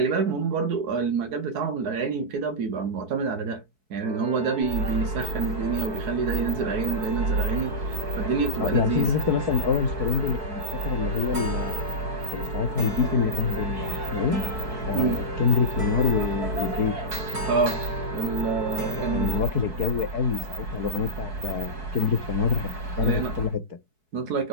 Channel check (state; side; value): late; left; 4.6 ms